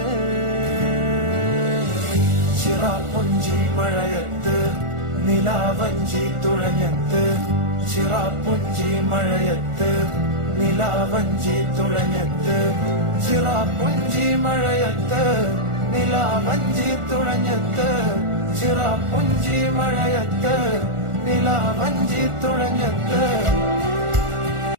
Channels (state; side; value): late; left; 1.4 ms